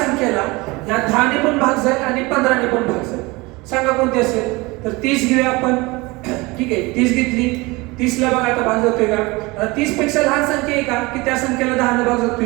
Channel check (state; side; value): quieter; left; 23.7 dB